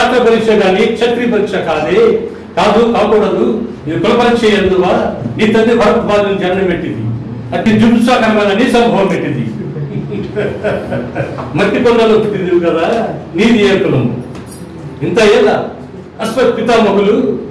పరీక్ష కానీ క్షత్రియ పరీక్ష కాకూడదు. ఇది కుల పరీక్ష ఎందువా? నీ తండ్రి భరద్వాజుని జన్మ పెట్టింది, అతి జుంసాకరమైన నీ సంభవం పెట్టింది. మట్టి కొండలో పుట్టింది కదా, నీది ఏ కులము? ఇంత ఏళ్ళ అశ్వత్ పితామహులు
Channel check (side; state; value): both; identical; correlation 1.00